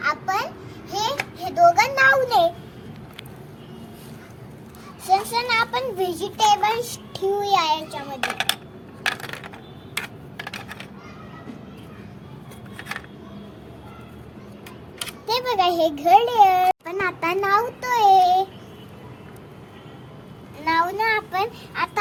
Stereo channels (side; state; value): both; identical; correlation 1.00